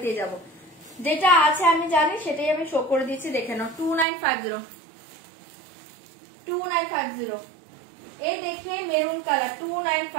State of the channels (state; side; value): drops out; left; at 4.0 s